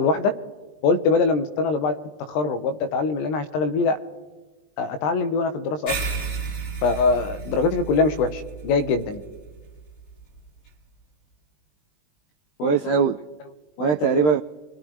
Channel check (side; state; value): right; late; 20 ms